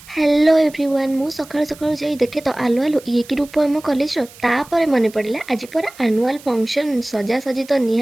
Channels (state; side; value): noise; right; hiss, 21 dB below the sound